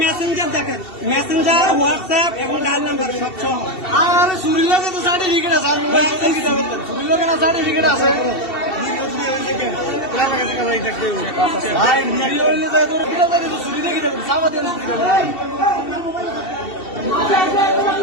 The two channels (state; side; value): late; right; 2.7 ms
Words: মেসেঞ্জার দেখেন, Messenger, WhatsApp এবং ডায়াল নাম্বার সব সহ। আর চুরির লগে তো সার্টিফিকেট আছে, আমি চুরির লগে না সার্টিফিকেট আছে। ভাই ভিডিও হইলে তো তোর কিটা জানি তো চুরি দেখি দেব, সাবা দিয়ে চুরি দেব।